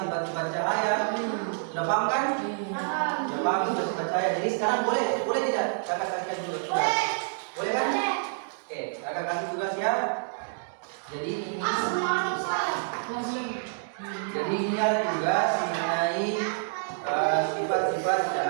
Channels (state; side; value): silent; left; digital silence